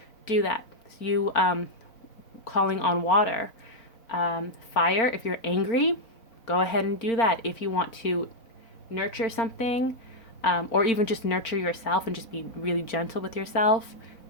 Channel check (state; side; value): late; right; 4.4 ms